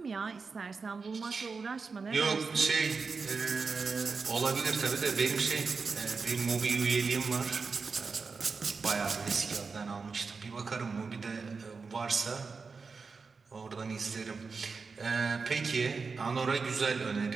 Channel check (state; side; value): quieter; left; 4.8 dB